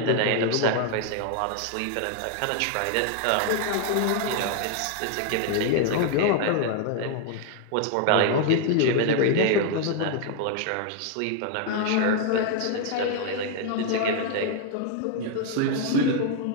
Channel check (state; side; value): different; both; correlation 0.00